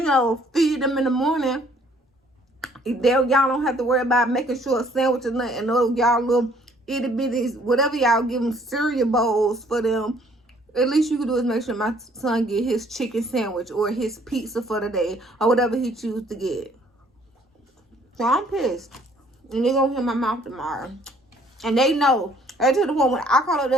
know, feed them in the morning. Y'all don't have to worry about making sure a sandwich or nothing. Those y'all little itty bitties, whatever y'all give them cereal bowls for them. At least you can do is make sure my son get his chicken sandwich or his pizza for the day or whatever he chooses to get. So I'm pissed. And they're going to hear my mouth tomorrow. And they know. They to the point when I call up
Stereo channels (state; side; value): normal; both; correlation 0.61